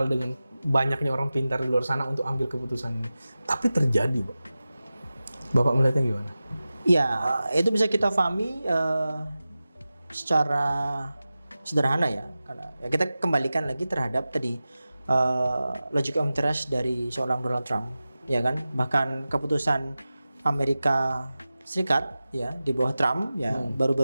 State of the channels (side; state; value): both; inverted; correlation -0.95